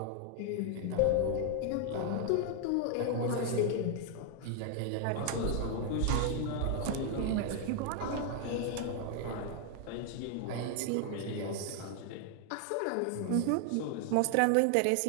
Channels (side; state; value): both; different; correlation 0.00